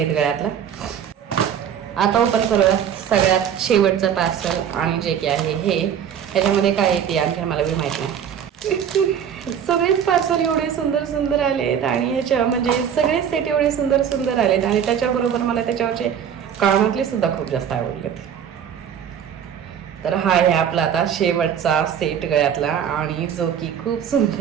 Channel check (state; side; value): quieter; left; 8.6 dB